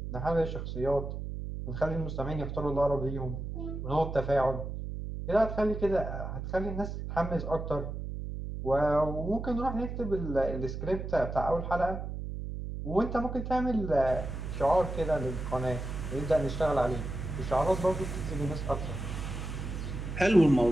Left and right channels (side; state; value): right; noise; hum, 6 dB below the sound